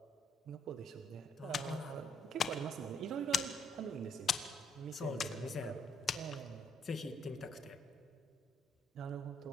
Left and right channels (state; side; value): normal; both; correlation 0.70